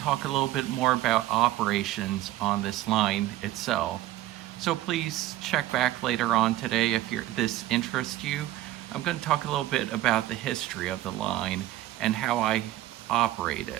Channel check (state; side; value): quieter; left; 15.0 dB